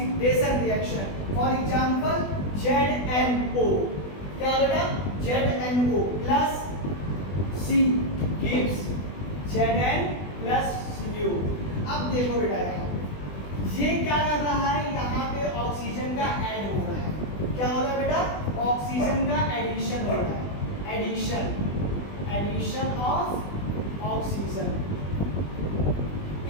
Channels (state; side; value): late; right; 20 ms